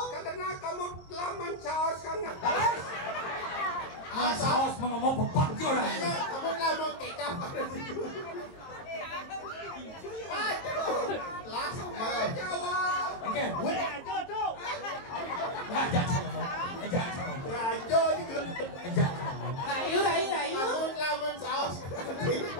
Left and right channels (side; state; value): right; late; 22 ms